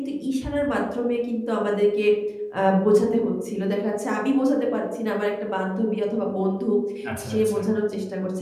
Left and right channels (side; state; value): both; identical; correlation 1.00